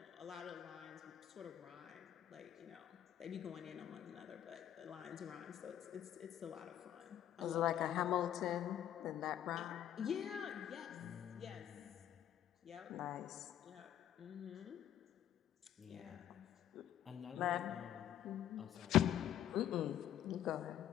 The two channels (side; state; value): right; quieter; 11.0 dB